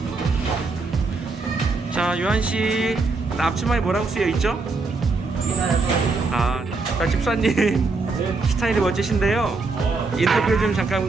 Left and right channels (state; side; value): quieter; left; 3.8 dB